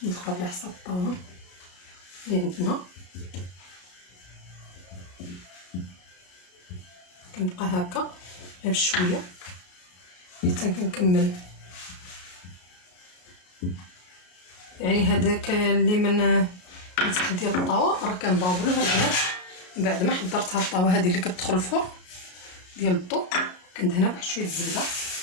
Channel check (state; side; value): late; right; 33 ms